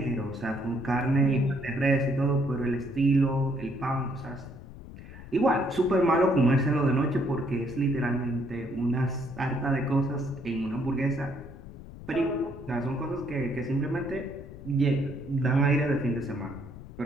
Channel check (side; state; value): left; noise; rumble, 15 dB below the sound